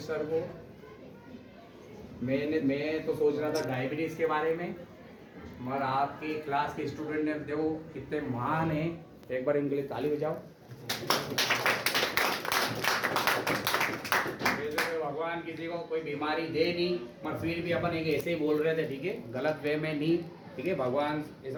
सर को मैं तो सोच रहा था डायबिटीज के बारे में, मगर आपकी क्लास के स्टूडेंट ने देखो कितने महान हैं, एक बार इनके लिए ताली बजाओ। वैसे भगवान किसी को कोई बीमारी दे नहीं, मगर फिर भी अपन एक ऐसे ही बोल रहे थे, ठीक है, गलत वे में नहीं, ठीक है। भगवान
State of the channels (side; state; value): both; identical; correlation 1.00